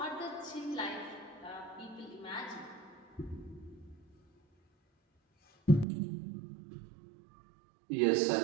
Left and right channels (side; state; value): left; drops out; at 5.9 s